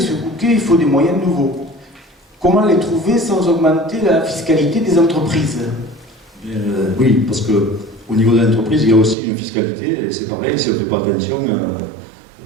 Bouquet, il faut des moyens nouveaux. Comment les trouver sans augmenter la fiscalité des entreprises? Oui, parce qu'au niveau de l'entreprise, il y a aussi une fiscalité, et c'est pareil, si on ne fait pas attention,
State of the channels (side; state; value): left; drops out; at 9.2 s